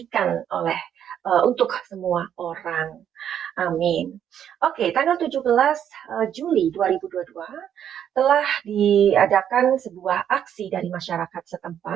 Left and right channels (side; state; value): left; quieter; 9.4 dB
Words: oleh untuk semua orang. Amin. Oke, tanggal 17 Juli 2022 telah diadakan sebuah aksi dari masyarakat